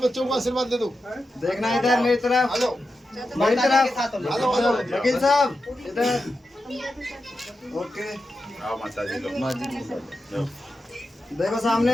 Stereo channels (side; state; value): both; normal; correlation 0.90